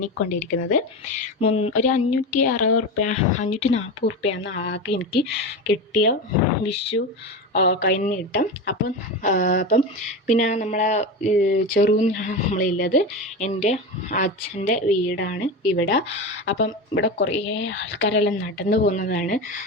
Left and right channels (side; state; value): both; normal; correlation 0.22